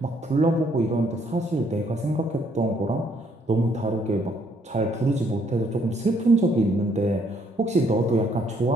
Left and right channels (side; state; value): both; normal; correlation 0.68